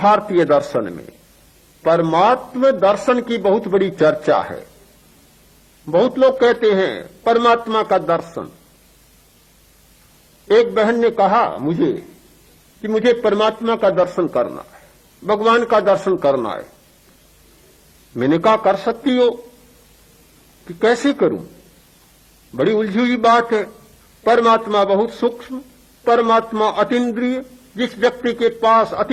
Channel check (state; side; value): identical; both; correlation 1.00